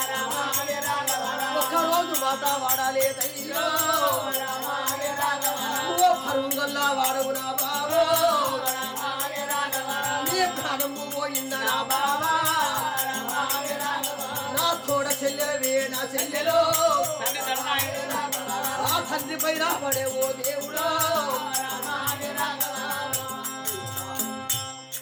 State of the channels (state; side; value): identical; both; correlation 1.00